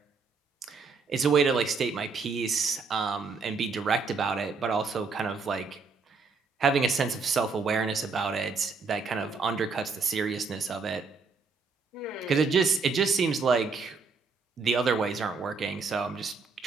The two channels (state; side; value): quieter; left; 4.7 dB